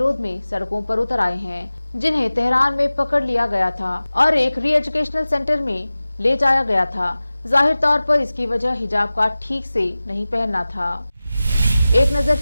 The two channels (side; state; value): both; inverted; correlation -0.97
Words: में सड़कों पर उतर आए हैं, जिन्हें तेहरान में पकड़ लिया गया था और एक री एजुकेशनल सेंटर में ले जाया गया था। जाहिर तौर पर इसकी वजह हिजाब का ठीक से नहीं पहनना था। एक नजर